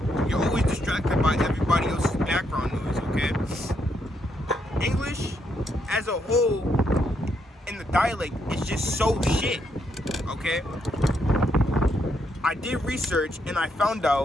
You're always distracted by everybody else's background noise, okay? English as a whole in the dialect is just so shit, okay? I did research and I found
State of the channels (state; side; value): normal; both; correlation 0.77